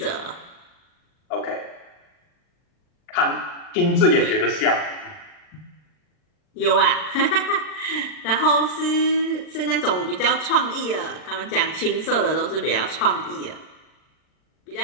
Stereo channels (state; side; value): late; right; 40 ms